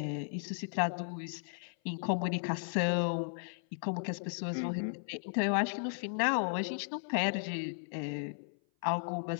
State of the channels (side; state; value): right; silent; 54 dB below the other